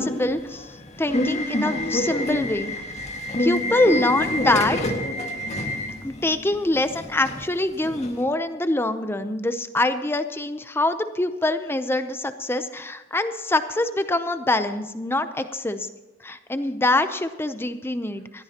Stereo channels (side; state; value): both; normal; correlation 0.62